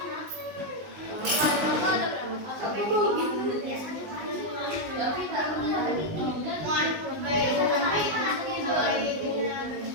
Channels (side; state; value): left; late; 19 ms